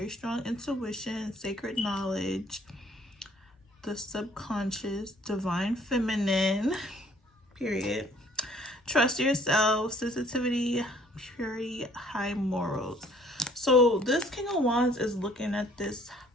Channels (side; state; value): both; normal; correlation 0.59